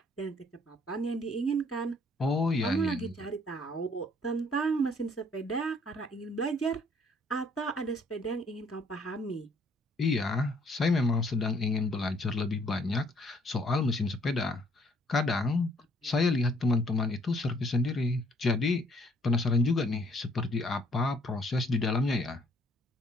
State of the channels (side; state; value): both; normal; correlation 0.63